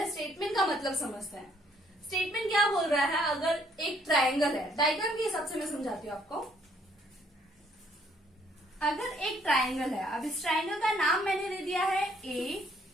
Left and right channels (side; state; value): both; normal; correlation 0.66